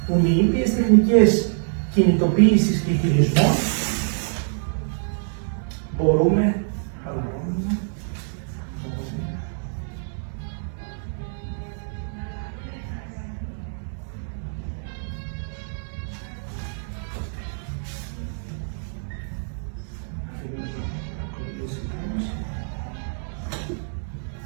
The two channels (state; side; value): silent; left; digital silence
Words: που με ήπιες τεχνικές κινητοποίησης και χειρισμών μπορούμε